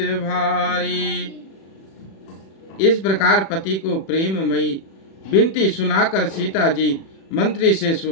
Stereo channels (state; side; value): late; right; 36 ms